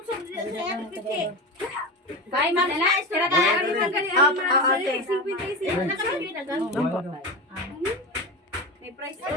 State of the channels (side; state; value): both; normal; correlation 0.22